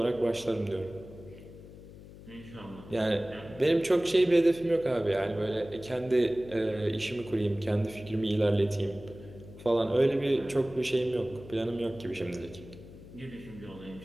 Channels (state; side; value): noise; left; hum, 17 dB below the sound